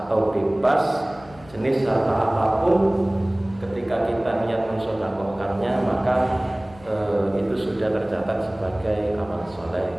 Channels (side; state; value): left; noise; hum, 22 dB below the sound